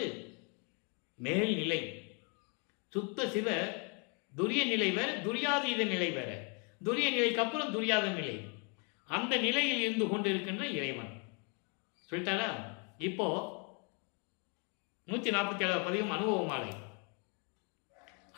மேல்நிலை. சுத்த சிவ துரிய நிலை வேற, துரியாதீத நிலை வேற. துரிய நிலைக்கு அப்புறம் துரியாத நிலை. அந்த நிலையில் இருந்து கொண்டிருக்கின்ற இறைவன் சொல்லிட்டாரா? இப்போ 147 பதிகம் அனுபவமாலை.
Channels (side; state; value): right; quieter; 36.2 dB